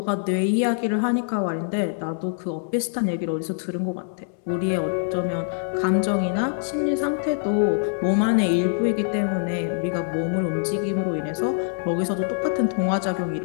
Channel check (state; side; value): silent; right; digital silence